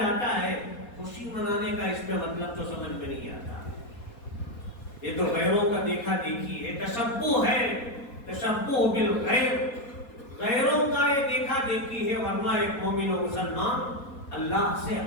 ہے۔ خوشی منانے کا اس میں مطلب تو سمجھ میں نہیں آتا، یہ تو غیروں کا دیکھا دیکھی ہے، تشبہ بالغیر، غیروں کا یہ دیکھا دیکھی ہے، ورنہ ایک مومن و مسلمان اللہ سے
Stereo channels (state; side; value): late; right; 4.2 ms